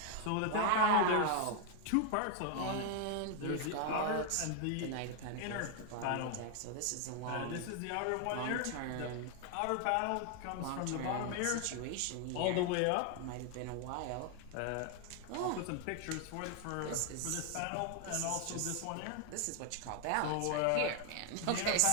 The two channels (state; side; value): different; both; correlation 0.00